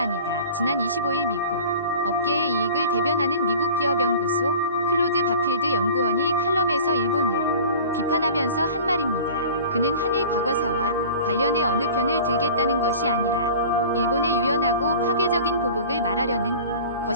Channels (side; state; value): both; inverted; correlation -0.41